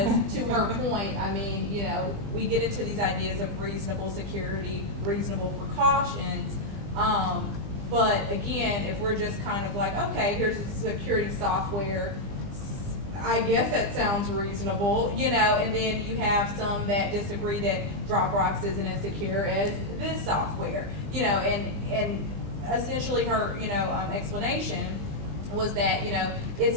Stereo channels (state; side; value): late; left; 20 ms